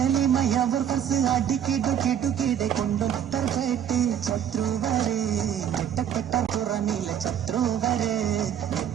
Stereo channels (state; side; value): quieter; left; 9.5 dB